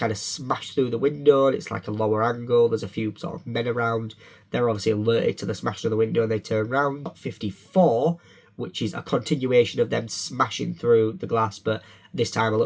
of smash through the window, and it's like a lower angle. There's a few sort of men around. They're obviously alerted to the smashing of the window and they turn around. Shot 54, which is a continuation of them smashing through the glass, but this time a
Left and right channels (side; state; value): both; identical; correlation 1.00